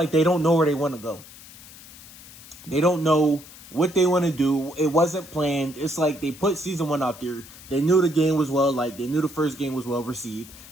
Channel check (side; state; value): left; noise; hiss, 19 dB below the sound